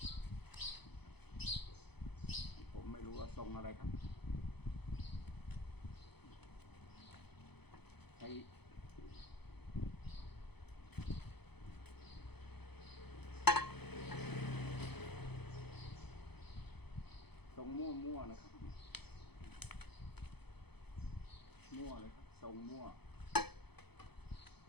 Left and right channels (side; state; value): right; late; 0.98 ms